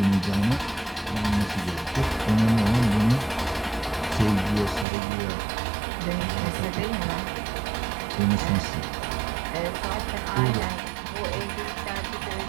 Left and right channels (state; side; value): drops out; left; at 4.9 s